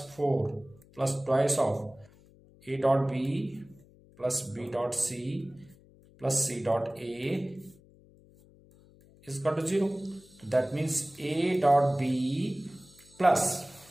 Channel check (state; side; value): noise; left; hum, 26 dB below the sound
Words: 4 plus twice of A dot B plus B dot C plus C dot A is equal to 0. तो that means A dot B plus